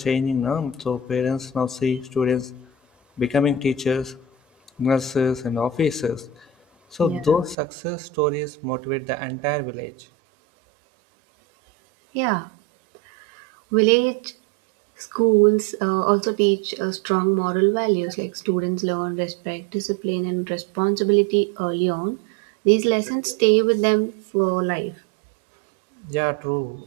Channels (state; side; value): drops out; left; at 7.6 s